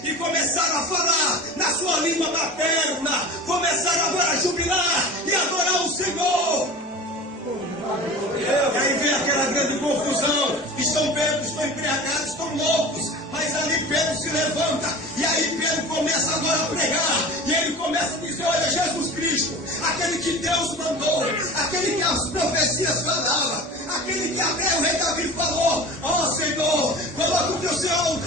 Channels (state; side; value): normal; both; correlation 0.36